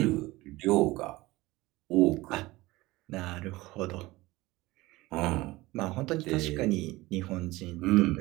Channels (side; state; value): left; quieter; 19.9 dB